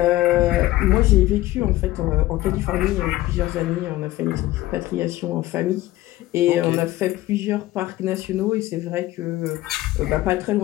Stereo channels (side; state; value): right; quieter; 16.6 dB